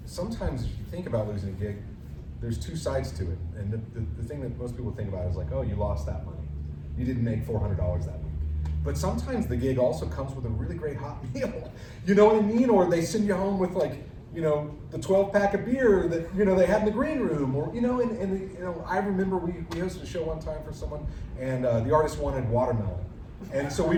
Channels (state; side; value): identical; both; correlation 1.00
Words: Sometimes if you think about losing a gig, there's 2 sides to it. And the thing that most people think about is like, oh, you lost that money. You didn't make $400 that week. But sometimes the gig also comes with a really great hot meal. You know what I mean? Or they send you home with the 12-pack of beer that they had in the green room, or I remember we hosted a show one time for someone, and the artist wanted watermelon, and so we